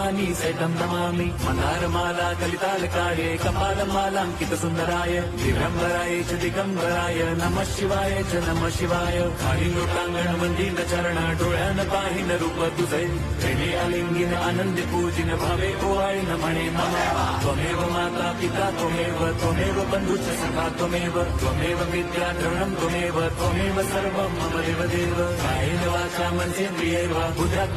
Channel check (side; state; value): both; identical; correlation 1.00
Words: सहितं नमामि। मन्दारमाला कलितालकाये कपालमालाङ्कितसुन्दराय दिगम्बराय च दिगम्बराय नमः शिवाय च नमः शिवाय। खालीलोटांगण मंदिर चरण डोळ्यान पाहिन रूप तुझे प्रेमे अलिंगिन आनंदी पूजिन भावे ओवाळीन म्हणे मम त्वमेव माता पिता त्वमेव बंधुश्च सखा त्वमेव विद्या द्रवणं त्वमेव सर्वं मम देवदेव। कायेन वाचा मनसेन्द्रियैर्व